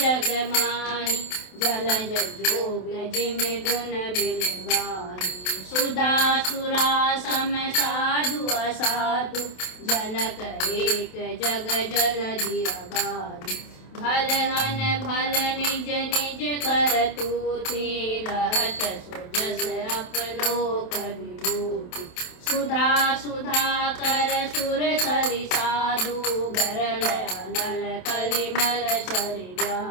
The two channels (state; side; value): late; right; 27 ms